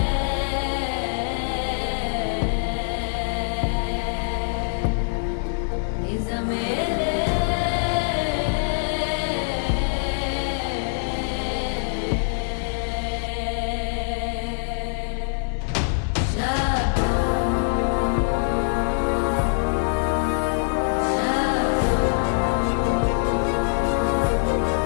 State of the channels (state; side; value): silent; right; digital silence